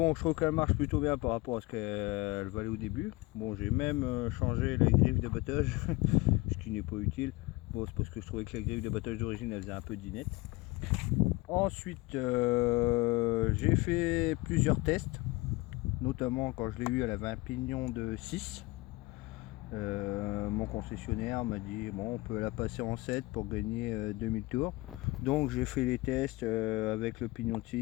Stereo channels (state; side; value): quieter; right; 22.1 dB